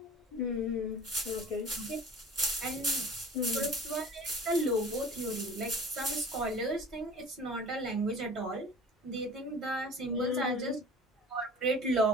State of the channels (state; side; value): normal; both; correlation 0.41